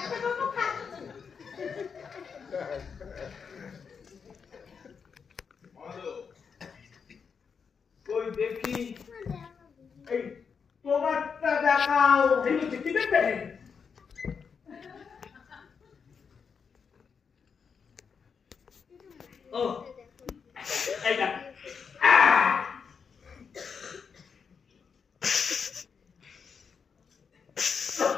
কই দেখি, এই তোমারটা দেখাও। কি দেখবে? ও এইটা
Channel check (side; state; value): right; quieter; 6.1 dB